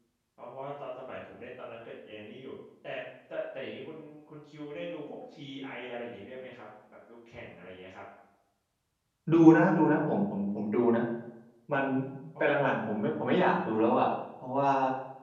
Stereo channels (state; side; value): identical; both; correlation 1.00